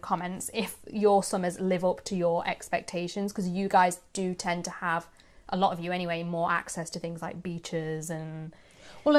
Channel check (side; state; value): both; identical; correlation 1.00